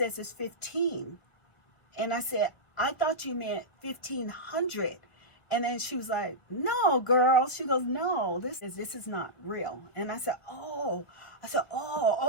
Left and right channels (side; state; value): right; late; 1.4 ms